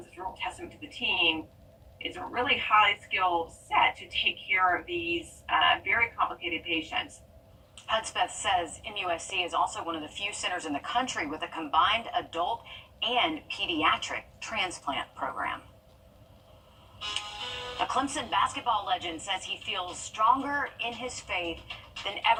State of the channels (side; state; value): both; identical; correlation 1.00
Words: a real testament to the team. It's a really highly skilled set to take care of these very complicated patients. Hudspeth says MUSC is also one of the few centers in the country with a combined adult and pediatric transplant program. A Clemson basketball legend says he feels stronger in his faith than